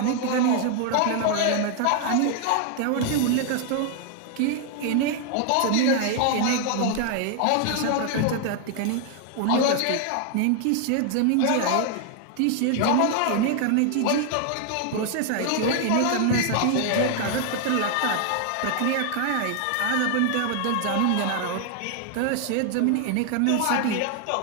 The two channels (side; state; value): both; different; correlation 0.00